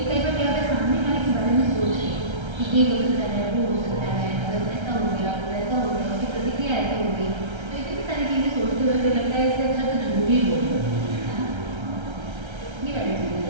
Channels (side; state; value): left; late; 1.3 ms